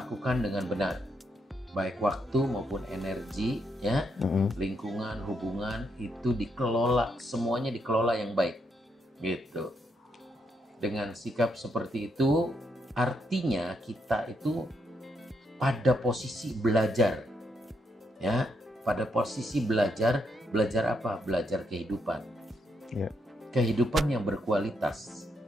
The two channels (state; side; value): normal; both; correlation 0.78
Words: dengan benar, baik waktu maupun energi, ya, lingkungan, hubungan itu dikelola, semuanya dikelola yang baik, gitu. Dengan sikap seperti itu, artinya kita itu pada posisi belajar, ya, pada posisi belajar apa? Belajar kehidupan. Yeah. Kehidupan yang berkualitas